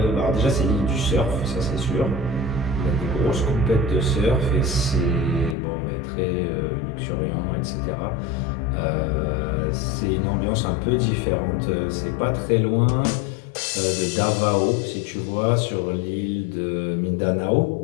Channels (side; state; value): right; drops out; at 5.6 s